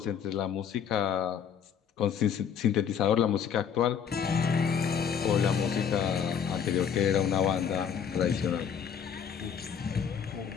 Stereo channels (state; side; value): quieter; right; 7.6 dB